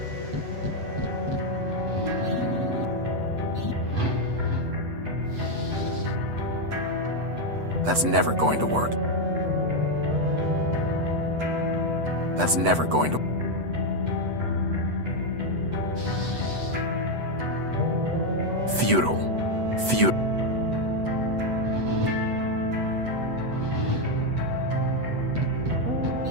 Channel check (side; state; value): left; late; 8.0 ms